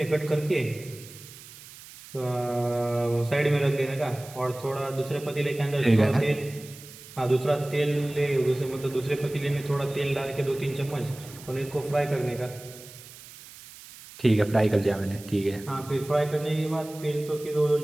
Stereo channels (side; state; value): right; noise; hiss, 18 dB below the sound